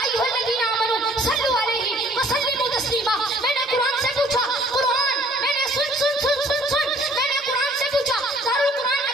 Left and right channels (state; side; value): normal; both; correlation 0.57